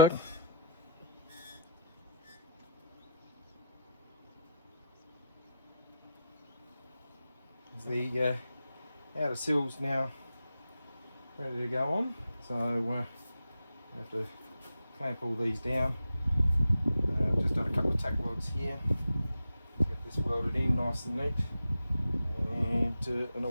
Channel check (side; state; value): both; inverted; correlation -0.79